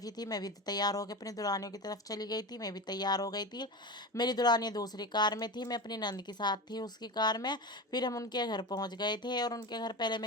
ही थी। मैं भी तैयार होकर अपनी दुल्हनियों की तरफ चली गई थी। मैं भी तैयार हो गई थी। मेरी दुल्हनियाँ दूसरी कार में थी, मैं अपनी नंद के साथ थी उसकी कार में। फिर हम उनके घर पहुँच गए थे और उनके घर पहले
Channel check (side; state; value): both; normal; correlation 0.25